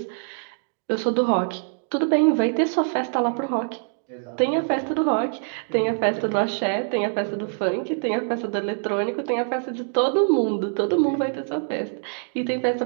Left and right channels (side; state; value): left; silent; 62 dB below the other